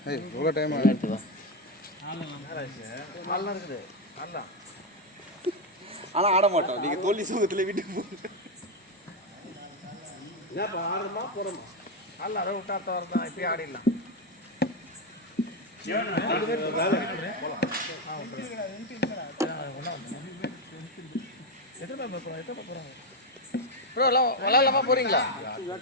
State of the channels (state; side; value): normal; both; correlation 0.07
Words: ஏய் இவ்வளோ டைம் ஆகுது நல்லா இருக்குது நல்லா ஆனா ஆட மாட்டோம் நீங்க தோல்வி சுகத்துல வீட்டுக்கு போங்க நல்லா அதை விட்டாத்த வரதான் இப்பயே ஆடிடலாம் எத்தனை போறாங்க ப்ரோ எல்லாம் விளாட்லாமா போறீங்களா